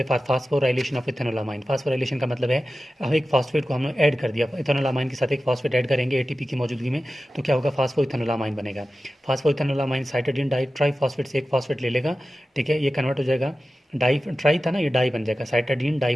फास्फोराइलेशन ऑफ इथानोलामाइन। फास्फोराइलेशन का मतलब है हम एक फास्फेट को हमने ऐड कर दिया, इथानोलामाइन के साथ एक फास्फेट ऐड करेंगे एटीपी की मौजूदगी में, तो क्या होगा, फास्फो इथानोलामाइन बनेगा। फास्फो इथानोलामाइन साइटाडीन डाई ट्राई फास्फेट से एक फास्फेट ले लेगा, ठीक है, ये कन्वर्ट हो जाएगा, डाई ट्राई था ना, ये डाई बन जाएगा, साइटाडीन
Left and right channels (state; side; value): normal; both; correlation 0.94